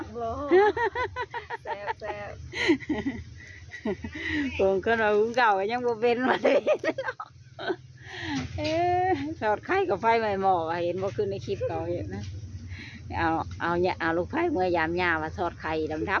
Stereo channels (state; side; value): identical; both; correlation 1.00